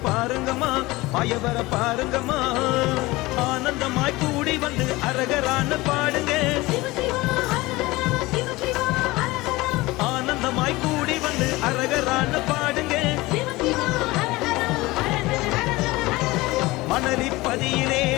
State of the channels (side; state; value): right; quieter; 20.7 dB